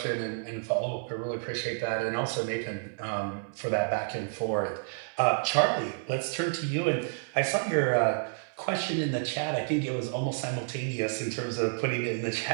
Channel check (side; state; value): left; silent; 58 dB below the other